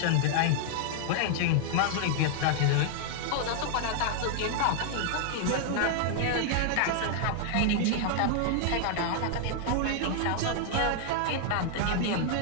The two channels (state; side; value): different; both; correlation -0.01